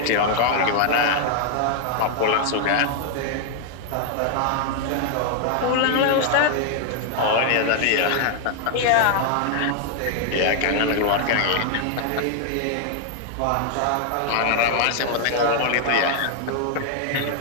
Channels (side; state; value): both; different; correlation 0.00